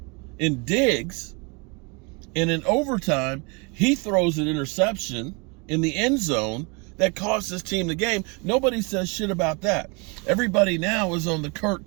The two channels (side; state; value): left; quieter; 30.6 dB